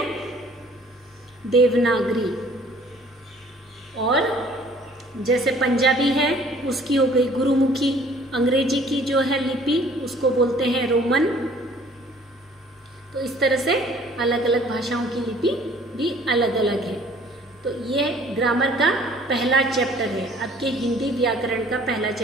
देवनागरी। और जैसे पंजाबी है, उसकी हो गई गुरुमुखी। अंग्रेजी की जो है लिपि, उसको बोलते हैं रोमन। तो इस तरह से अलग अलग भाषाओं की लिपि भी अलग अलग है। तो ये ग्रामर का पहला चैप्टर है, आपके हिंदी व्याकरण का पहला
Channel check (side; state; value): both; normal; correlation 0.55